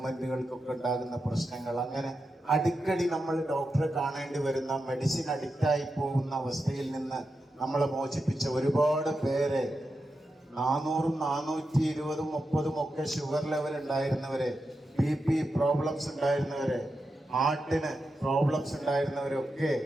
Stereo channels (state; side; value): normal; both; correlation 0.89